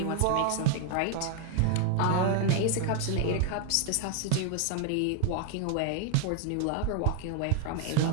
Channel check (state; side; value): different; both; correlation 0.00